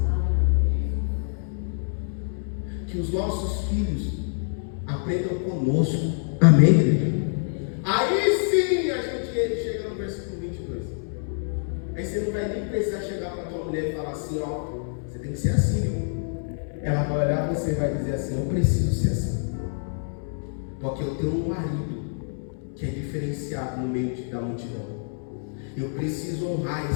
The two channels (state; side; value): silent; right; 61 dB below the other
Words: Que os nossos filhos aprendam conosco. Amém, igreja? Aí sim a gente chega no versículo 22. Aí você não vai nem precisar chegar para a tua mulher e falar assim: ó, você tem que ser assim, viu? Ela vai olhar para você e vai dizer assim: eu preciso ser assim. Porque eu tenho um marido que é diferenciado no meio da multidão. Eu preciso honrar